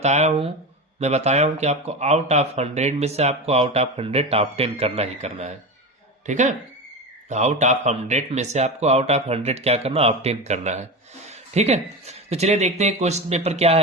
हूं कि आपको आउट ऑफ 100 में से आपको आउट ऑफ 100 ऑब्टेन करना ही करना है। ठीक है, आउट ऑफ 100 में से आपको आउट ऑफ 100 क्या करना, ऑब्टेन करना है। ठीक है, तो चलिए देखते हैं क्वेश्चन पेपर क्या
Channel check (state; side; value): normal; both; correlation 0.22